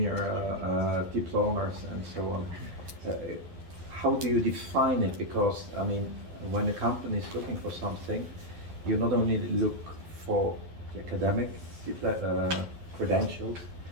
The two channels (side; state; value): left; late; 11 ms